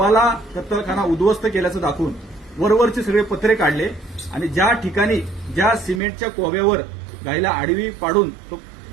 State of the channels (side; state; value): left; drops out; at 6.0 s